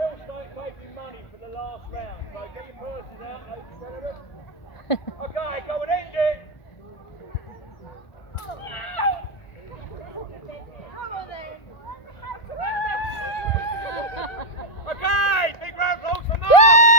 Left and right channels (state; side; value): late; right; 1.4 ms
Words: start taking money for the last round, so get your purses out, ladies and gentlemen. Okay, go and end it. Okay, big round of applause for Mark.